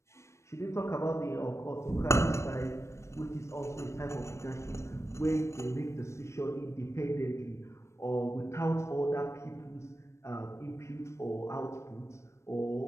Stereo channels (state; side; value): late; right; 0.13 ms